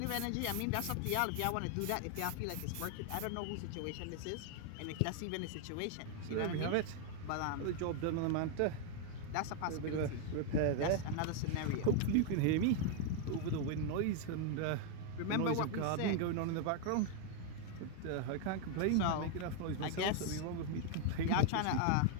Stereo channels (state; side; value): different; both; correlation 0.00